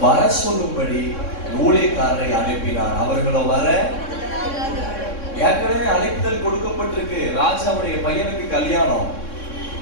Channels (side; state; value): right; late; 3.6 ms